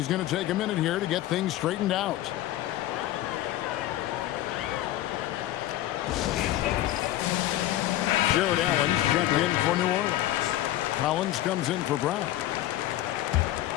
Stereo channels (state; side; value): quieter; right; 14.3 dB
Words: going to take a minute here to get things straightened out. Jared Allen's checked in for New Orleans. Collins comes in for Brown.